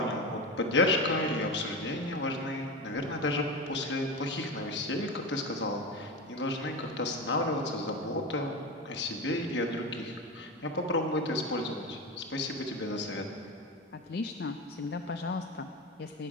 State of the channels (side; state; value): both; normal; correlation 0.22